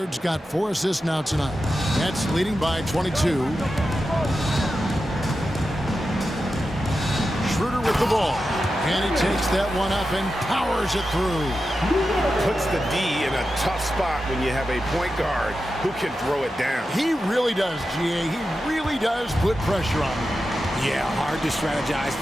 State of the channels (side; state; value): both; normal; correlation 0.91